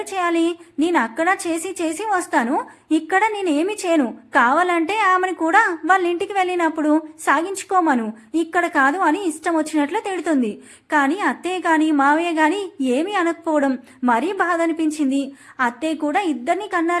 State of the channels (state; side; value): identical; both; correlation 1.00